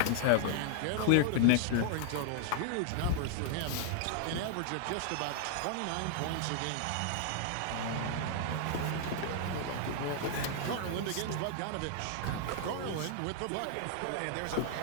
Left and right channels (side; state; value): both; different; correlation 0.00